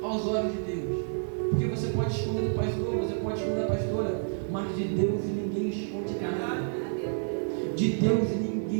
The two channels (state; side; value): silent; left; 58 dB below the other